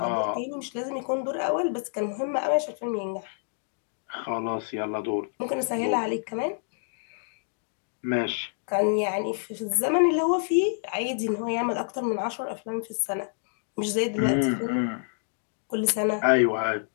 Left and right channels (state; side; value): silent; right; digital silence